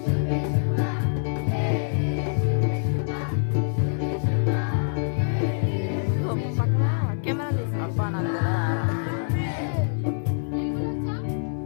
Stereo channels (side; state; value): right; silent; 62 dB below the other